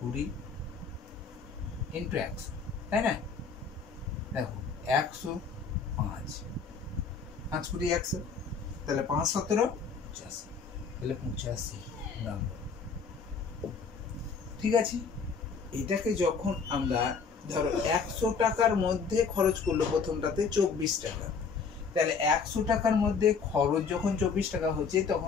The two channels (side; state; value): right; quieter; 5.4 dB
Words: ইন্টু 100, তাই না? দেখো 100 5, 5 × 100, তাহলে 5 17 85, তাহলে 85 নম্বর। ঠিক আছে? এটাকে যখন আমরা ধরো 100 টাকার মধ্যে খরচ করলো, প্রথমটাতে 24 টাকা, তাহলে 100 টাকার মধ্যে খরচ যখন 24 টাকা হচ্ছে,